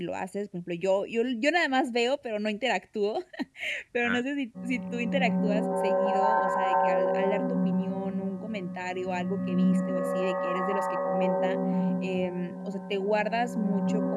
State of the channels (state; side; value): identical; both; correlation 1.00